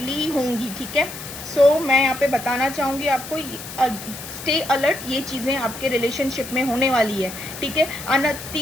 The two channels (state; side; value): noise; left; hiss, 12 dB below the sound